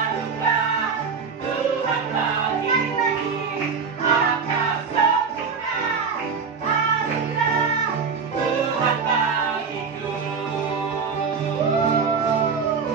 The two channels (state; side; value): quieter; left; 5.7 dB